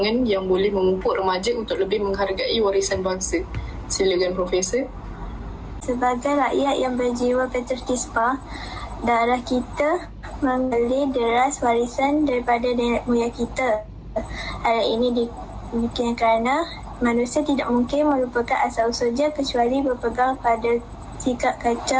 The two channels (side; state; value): both; identical; correlation 1.00